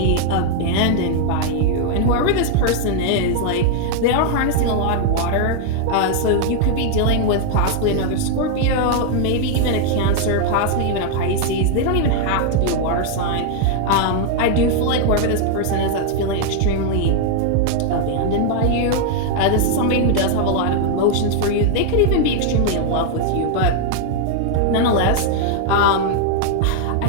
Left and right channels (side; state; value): both; different; correlation 0.00